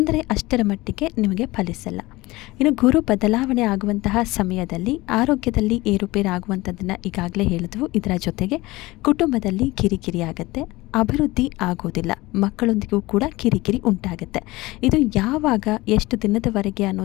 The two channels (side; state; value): right; quieter; 20.3 dB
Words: ಅಷ್ಟರ ಮಟ್ಟಿಗೆ ನಿಮಗೆ ಫಲಿಸಲ್ಲ. ಇನ್ನು ಗುರು ಬದಲಾವಣೆ ಆಗುವಂತಹ ಸಮಯದಲ್ಲಿ ಆರೋಗ್ಯದಲ್ಲಿ ಏರುಪೇರಾಗುವಂಥದ್ದನ್ನು ಈಗಾಗಲೇ ಹೇಳಿದ್ವು. ಇದರ ಜೊತೆಗೆ ಕುಟುಂಬದಲ್ಲಿ ಕಿರಿಕಿರಿ ಆಗುತ್ತೆ, ಅಭಿವೃದ್ಧಿ ಆಗೋದಿಲ್ಲ, ಮಕ್ಕಳೊಂದಿಗೂ ಕೂಡ ಕಿರಿಕಿರಿ ಉಂಟಾಗುತ್ತೆ. ಇದು ಯಾವಾಗ, ಎಷ್ಟು ದಿನದವರೆಗೆ